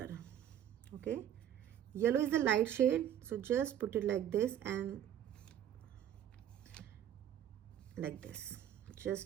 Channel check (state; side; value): quieter; left; 10.3 dB